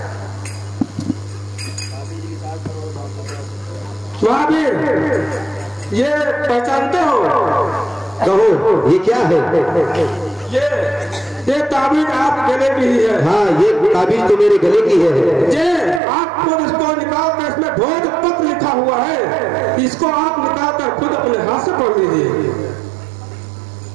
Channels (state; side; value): drops out; left; at 16.0 s